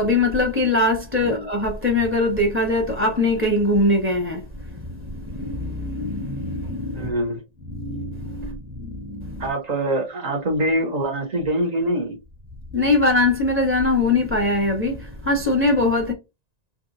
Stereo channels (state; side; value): late; left; 1.9 ms